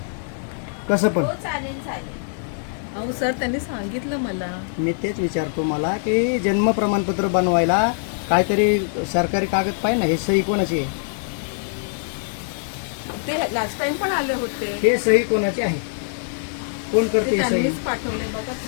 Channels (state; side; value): silent; right; digital silence